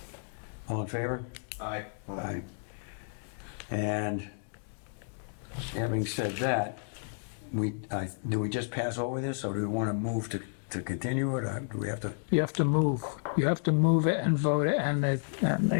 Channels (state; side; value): silent; right; digital silence